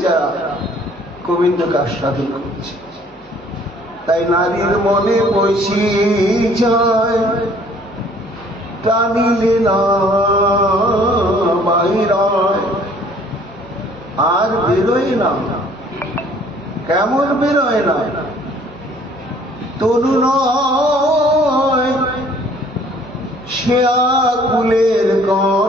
যারা গোবিন্দকে আস্বাদন করছে। তাই নারীর মনে বসি যায় টানিলে না বাইরায়, আর বেরোয় না। কেমন বেরোয় না? তরু নয় সে আকুলের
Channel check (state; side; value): noise; left; hum, 29 dB below the sound